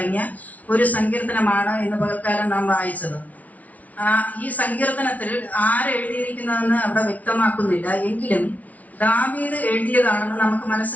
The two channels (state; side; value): late; right; 0.071 ms